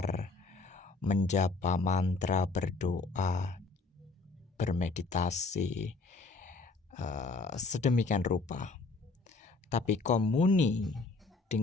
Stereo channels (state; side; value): quieter; right; 3.8 dB